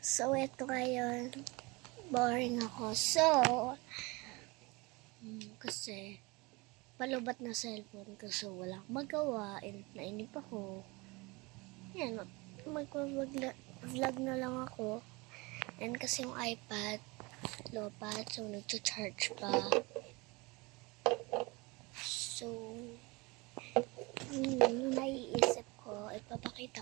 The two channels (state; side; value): quieter; left; 25.4 dB